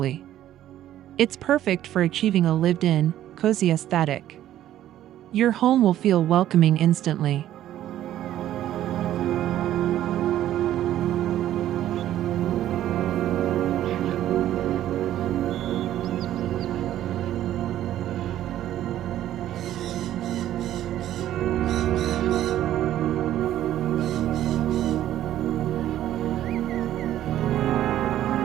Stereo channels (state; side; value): quieter; left; 12.5 dB